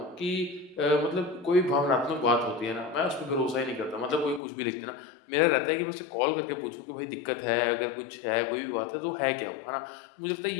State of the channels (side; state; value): right; drops out; at 4.4 s